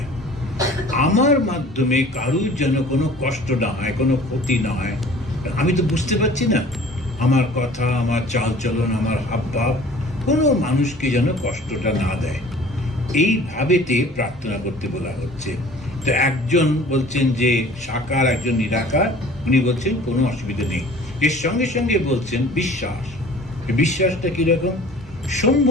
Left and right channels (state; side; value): normal; both; correlation 0.48